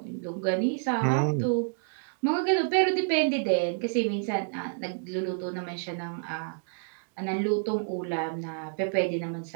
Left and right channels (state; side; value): silent; left; digital silence